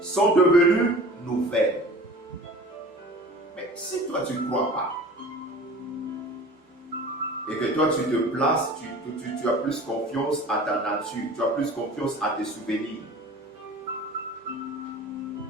sont devenues nouvelles. Mais si toi, tu ne crois pas, et que toi, tu te places, tu as plus confiance à ta nature, tu as plus confiance à tes souvenirs.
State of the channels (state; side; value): normal; both; correlation 0.41